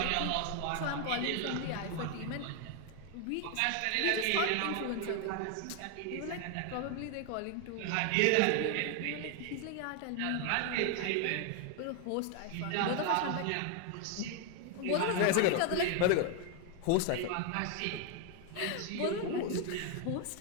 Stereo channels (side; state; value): both; different; correlation 0.01